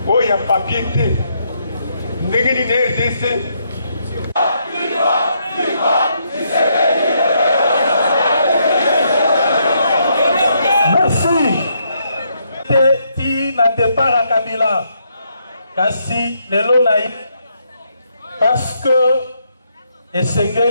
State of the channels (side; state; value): both; inverted; correlation -0.75